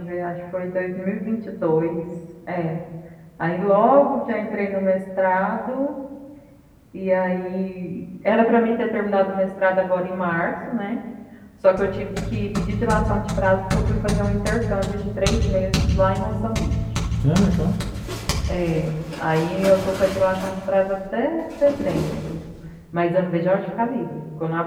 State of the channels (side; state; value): both; identical; correlation 1.00